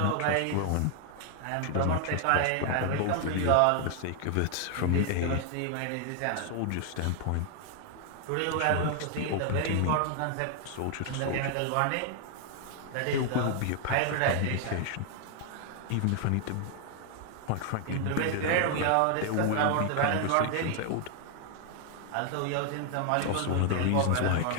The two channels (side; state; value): both; different; correlation 0.00